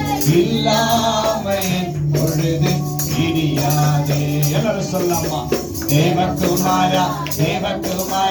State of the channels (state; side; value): identical; both; correlation 1.00